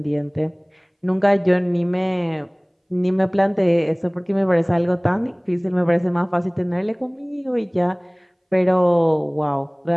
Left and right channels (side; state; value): both; identical; correlation 1.00